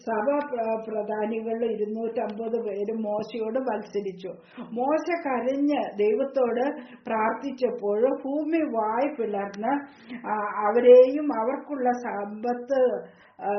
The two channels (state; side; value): identical; both; correlation 1.00